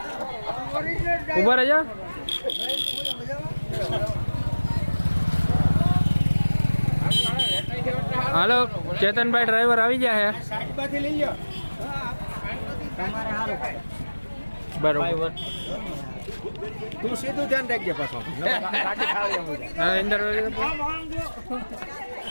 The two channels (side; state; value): both; inverted; correlation -1.00